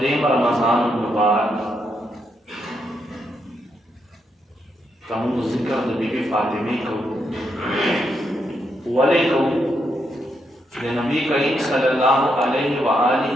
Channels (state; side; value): normal; both; correlation 0.80